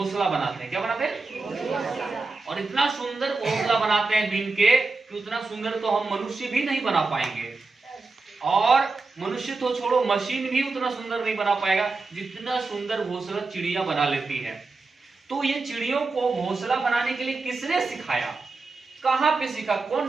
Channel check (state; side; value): quieter; left; 3.8 dB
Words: बनाते हैं। क्या बनाते हैं? और इतना सुंदर घोंसला बनाते हैं बीन के कि उतना सुंदर तो हम मनुष्य भी नहीं बना पाएंगे। और मनुष्य तो छोड़ो, मशीन भी उतना सुंदर नहीं बना पाएगा जितना सुंदर घोंसला चिड़िया बना लेती है। तो ये चिड़ियों को घोंसला बनाने के लिए किसने सिखाया? कहाँ पे सीखा? कौन